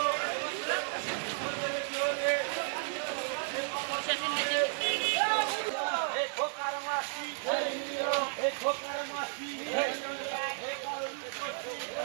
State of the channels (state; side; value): silent; left; digital silence